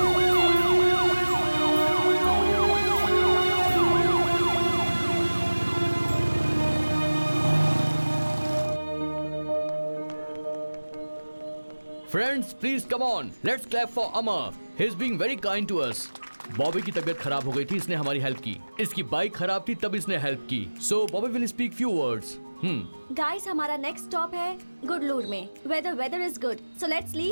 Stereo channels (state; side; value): inverted; both; correlation -1.00